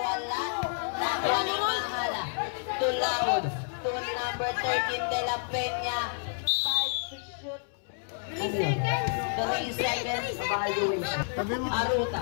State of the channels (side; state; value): right; silent; 58 dB below the other